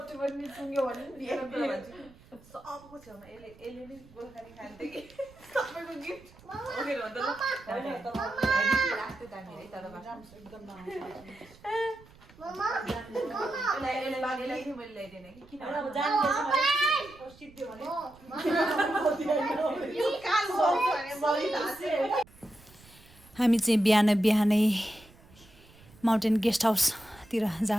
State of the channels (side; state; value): right; noise; rumble, 24 dB below the sound